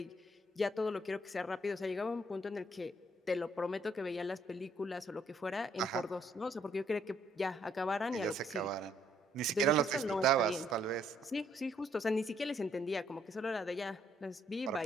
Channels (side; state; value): both; normal; correlation 0.68